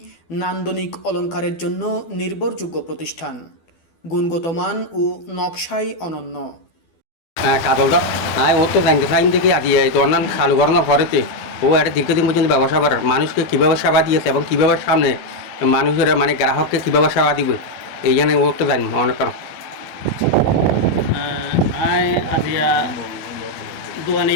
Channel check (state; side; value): late; right; 12 ms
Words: নান্দনিক অলঙ্কারের জন্য নির্ভরযোগ্য প্রতিষ্ঠান, গুণগত মান ও নকশায় অনন্য। কাজলটা ও তো জানতে চাইন দেখি আদি তো অন্যান্য চালু করানোর পরেতে ও একটা দীর্ঘদিন পর্যন্ত ব্যবসা করার মানুষকে কীভাবে সেবা দিয়েছে এবং কীভাবে সামনে মানুষের গ্রাহককে কীভাবে সেবা দিবে এই জন্য ও তো জানি অনেক কারণ আজিয়া